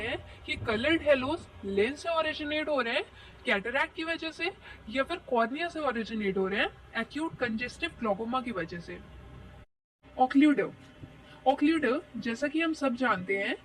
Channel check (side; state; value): both; identical; correlation 1.00